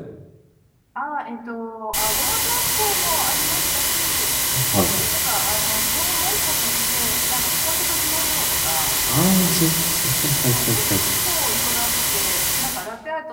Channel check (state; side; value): identical; both; correlation 1.00